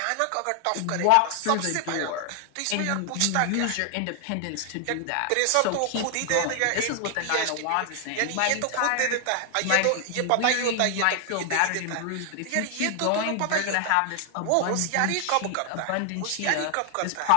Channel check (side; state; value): both; different; correlation 0.00